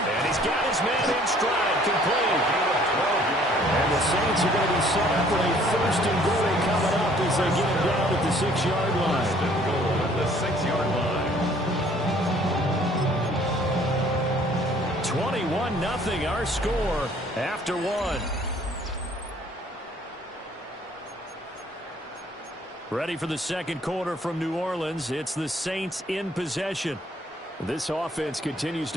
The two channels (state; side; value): normal; both; correlation 0.58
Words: And he's got his man in stride, complete. And the Saints are going to be set up with a 1st and goal coming up as they get him down at the 6-yard line. 1st and goal at the 6-yard line. 21-0 our score after 1. Ready for the 2nd quarter from New Orleans. It's the Saints in possession. This offense continues